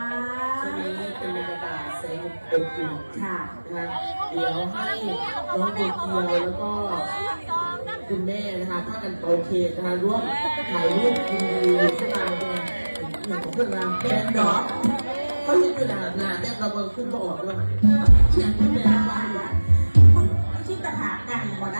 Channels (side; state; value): both; inverted; correlation -1.00